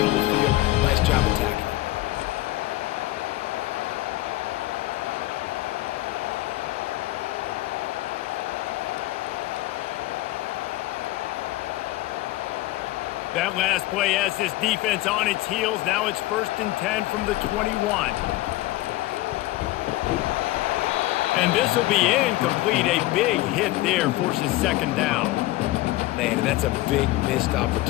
of the field. Nice job attacking it. That last play has this defense on its heels. Now it's 1st and 10 from the 21. And this will be incomplete. A big hit there forces second down. Man, and that's a big missed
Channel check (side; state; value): right; quieter; 17.9 dB